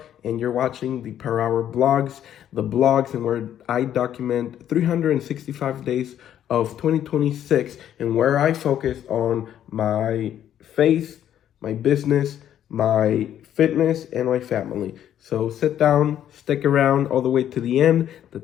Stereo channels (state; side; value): quieter; right; 10.6 dB